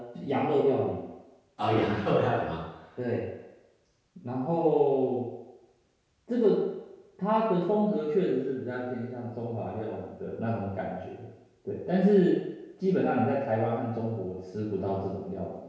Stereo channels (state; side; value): identical; both; correlation 1.00